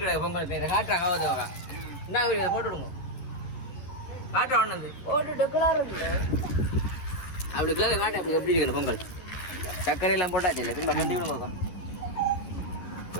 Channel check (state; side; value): late; right; 10 ms